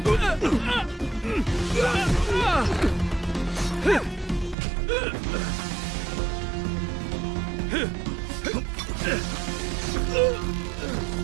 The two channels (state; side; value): drops out; left; at 4.5 s